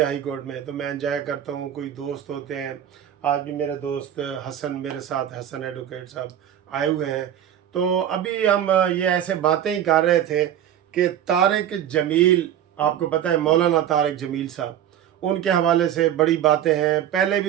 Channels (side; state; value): left; quieter; 10.5 dB